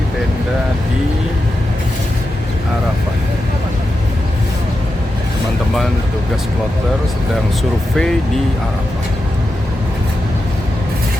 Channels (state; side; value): normal; both; correlation 0.89